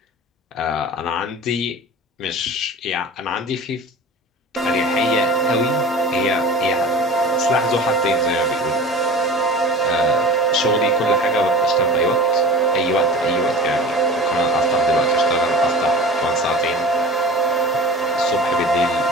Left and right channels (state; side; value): normal; both; correlation 0.37